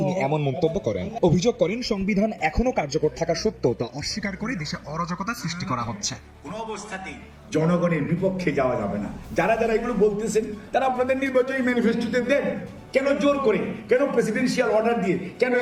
এমন মন্তব্য করেন। অভিযোগ করেন, সংবিধান এখনো কার্যকর থাকা সত্ত্বেও তা অস্বীকার করে দেশে অরাজকতা সৃষ্টি করা হচ্ছে। কোনো অবস্থাতেই জনগণের বিপক্ষে যাওয়া যাবে না। যারা যারা এগুলো বলতেছেন তারা আপনাদের নির্বাচনী ম্যানিফেস্টোতে দেন। কেন জোর করে, কেন প্রেসিডেন্সিয়াল অর্ডার দিয়ে, কেন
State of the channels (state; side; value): identical; both; correlation 1.00